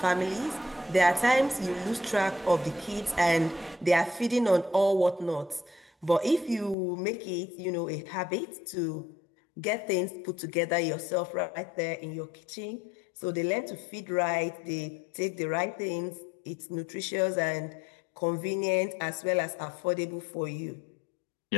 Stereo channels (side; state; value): right; drops out; at 6.8 s